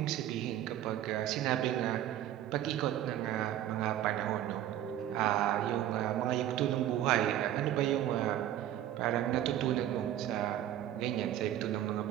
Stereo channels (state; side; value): quieter; left; 12.1 dB